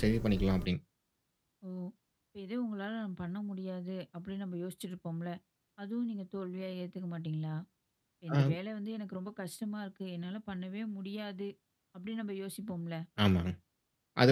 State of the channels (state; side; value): identical; both; correlation 1.00